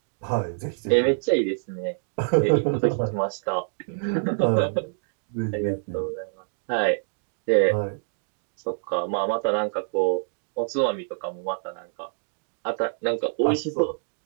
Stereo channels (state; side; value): silent; left; digital silence